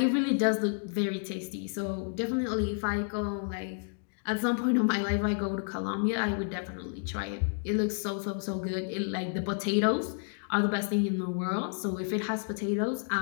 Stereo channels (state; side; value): silent; right; 57 dB below the other